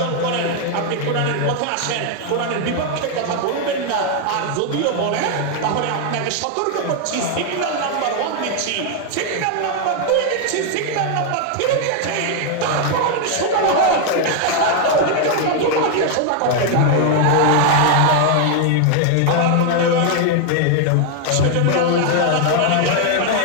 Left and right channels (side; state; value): both; different; correlation 0.00